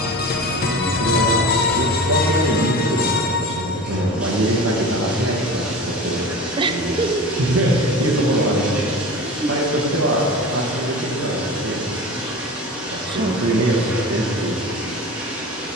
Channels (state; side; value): normal; both; correlation 0.34